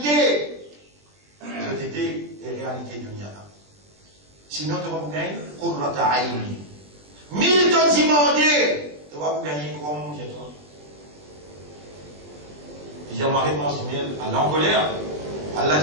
C'était les réalités de Niana. Sinon, tu vas vous gagner Qurrata Aini. 1000 tonnes demandées. Tu vas vous gagner comment manger toi? Il y a ma réponse du miel à l'encolère. Allah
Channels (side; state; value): left; late; 20 ms